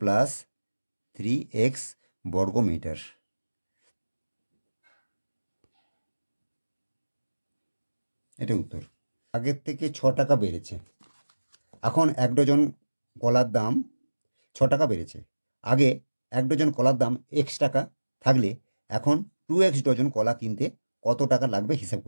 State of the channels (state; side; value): inverted; both; correlation -1.00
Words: plus 3x বর্গ মিটার। এটা উত্তর। আগের থেকে 6 টাকা বেড়েছে। এখন 1 ডজন কলার দাম 6 টাকা বেড়েছে। আগে 1 ডজন কলার দাম x টাকা থাকলে এখন 2x ডজন কলা কিনতে কত টাকা লাগবে হিসাব